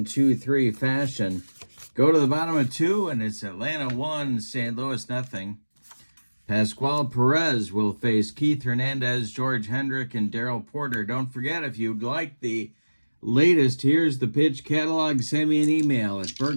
fashion. Go to the bottom of 2, and it's Atlanta 1, St. Louis nothing. Pascual Perez will face Keith Hernandez, George Hendrick, and Darrell Porter. Don't forget, if you'd like the latest Here's the Pitch catalog, send me an email at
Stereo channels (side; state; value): both; inverted; correlation -1.00